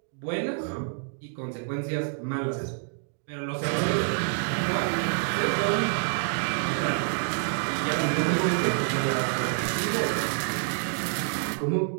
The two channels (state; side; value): silent; left; digital silence